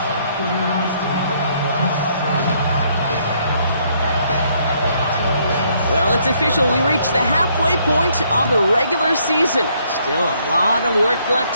Well, it's official. We reached the halfway point of the regular season. Still a lot of work left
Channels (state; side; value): inverted; both; correlation -0.69